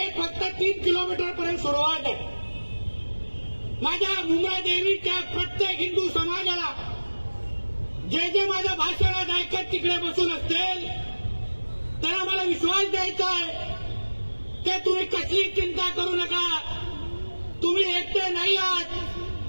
फक्त 3 किलोमीटर पर्यंत सुरुवात आहे. माझ्या मुंब्रा देवीच्या प्रत्येक हिंदू समाजाला जे जे माझ्या भाषणात ऐकत तिकडे बसून असतील त्यांना मला विश्वास द्यायचा आहे ते तुम्ही कसली चिंता करू नका. तुम्ही एकटे नाही आहात.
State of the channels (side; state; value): both; inverted; correlation -1.00